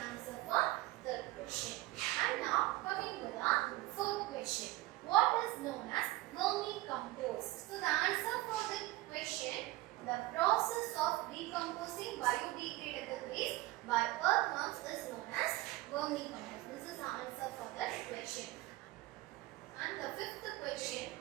for third question. And now coming to the fourth question. What is known as vermicompost? So the answer for the question, the process of decomposing biodegradable waste by earthworms is known as vermicompost. This is the answer for that question. And the fifth question,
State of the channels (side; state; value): left; quieter; 18.6 dB